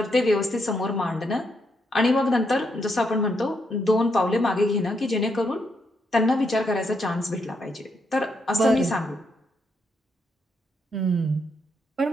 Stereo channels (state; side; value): normal; both; correlation 0.78